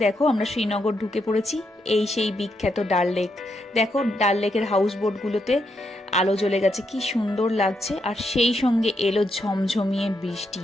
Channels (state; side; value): normal; both; correlation 0.80